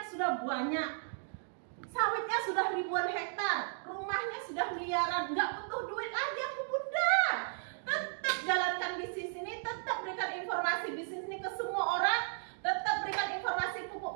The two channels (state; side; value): silent; left; digital silence